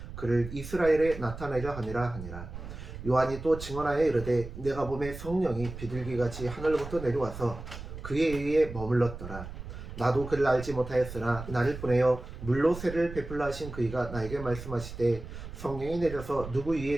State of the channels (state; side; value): noise; right; rumble, 11 dB below the sound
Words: 그를 이스라엘에 나타내려 함이라. 요한이 또 증언하여 이르되 내가 보매 성령이 비둘기같이 하늘로부터 내려와서 그에 의해 머물렀더라. 나도 그를 알지 못하였으나 나를 보내어 물로 세례를 베풀라 하신 그이가 나에게 말씀하시되 성령이 내려서 누구